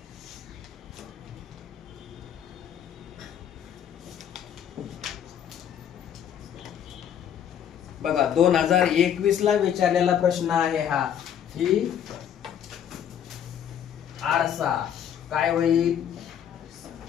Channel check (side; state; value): right; quieter; 9.3 dB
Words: बघा 2021 ला विचारलेला प्रश्न आहे हा. ही आरसा काय होईल?